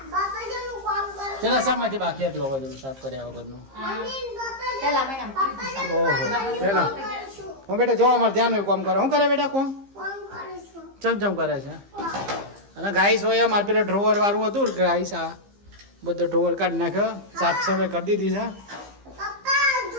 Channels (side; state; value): left; late; 15 ms